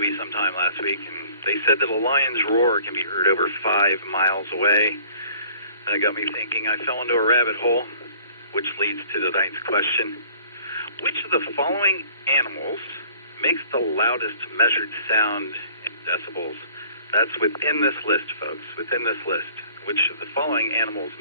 sometime last week, and they said that a lion's roar can be heard over 5 miles away. That got me thinking. I fell into a rabbit hole, which leads to tonight's question. Which of the following animals makes the loudest measured sound in decibels? That's within this list, folks, within this list. Which of the following animals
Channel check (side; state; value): both; inverted; correlation -0.54